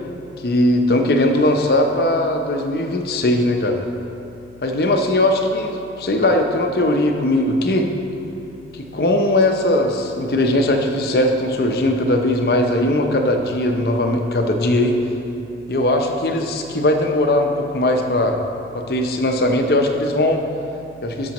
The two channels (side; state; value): left; noise; hum, 26 dB below the sound